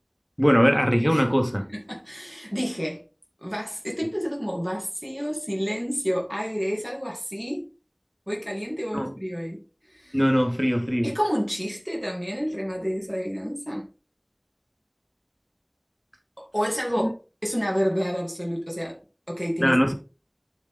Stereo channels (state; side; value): identical; both; correlation 1.00